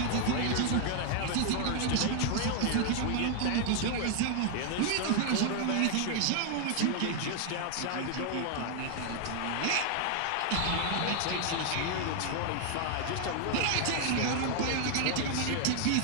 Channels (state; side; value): different; both; correlation 0.00